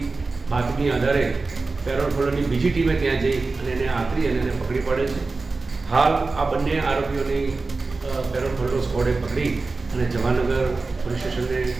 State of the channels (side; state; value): left; quieter; 3.8 dB